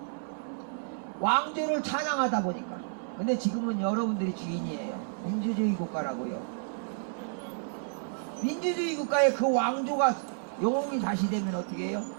왕조를 찬양하다 보니까. 근데 지금은 여러분들이 주인이에요. 민주주의 국가라고요. 민주주의 국가에 그 왕조가 영웅이 다시 되면 어떻게 해요?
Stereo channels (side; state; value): left; silent; 57 dB below the other